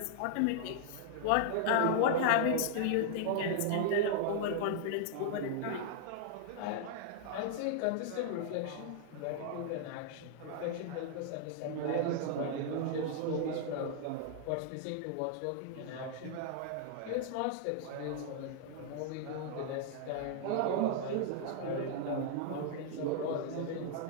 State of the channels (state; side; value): different; both; correlation -0.01